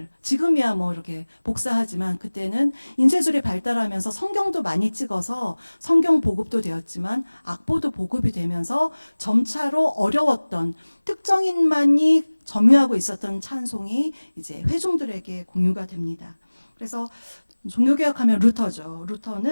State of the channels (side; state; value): both; inverted; correlation -1.00